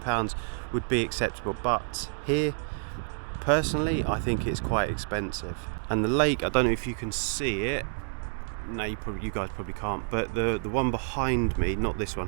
would be acceptable, but here, personally, I think it's quite expensive. And the lake, I don't know if you can see it. No, you guys probably can't, but the one behind me, not this one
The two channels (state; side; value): silent; left; digital silence